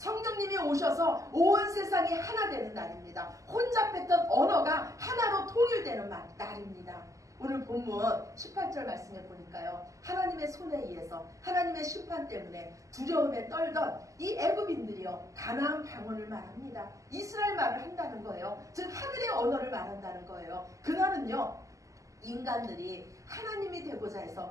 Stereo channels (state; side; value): late; left; 0.16 ms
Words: 오셔서 온 세상이 하나 되는 날입니다. 혼잡했던 언어가 하나로 통일되는 날입니다. 오늘 본문 18절 말씀에 보니까요 하나님의 손에 의해서 하나님의 심판 때문에 두려움에 떨던 이 애굽인들이요 가나안 방언을 말합니다. 이스라엘 말을 한다는 거예요. 즉 하늘의 언어를 말한다는 거예요. 그날은요 인간들이 하나님이 되고자